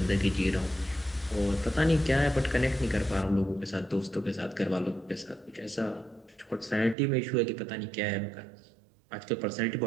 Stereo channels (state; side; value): drops out; left; at 7.0 s